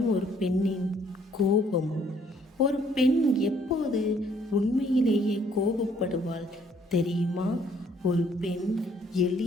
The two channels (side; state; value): both; normal; correlation 0.64